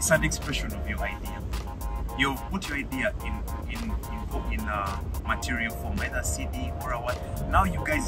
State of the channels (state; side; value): identical; both; correlation 1.00